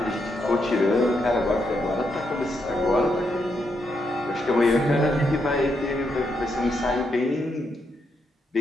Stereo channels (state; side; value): normal; both; correlation 0.80